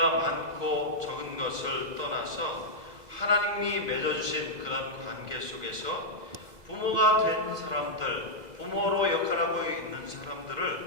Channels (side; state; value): left; late; 2.0 ms